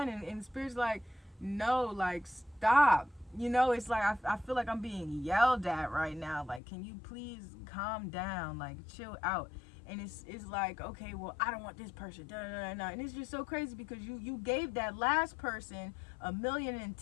And Spirit's like, no, like, stop. You know, it's like, I feel like I'm being yelled at right now. Like, can you please calm down? Like, chill out. And it's like, okay, well, I don't want this person. And it's just so crazy, because you gave that last person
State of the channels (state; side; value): drops out; right; at 6.6 s